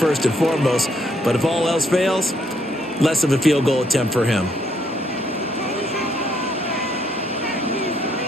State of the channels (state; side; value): normal; both; correlation 0.71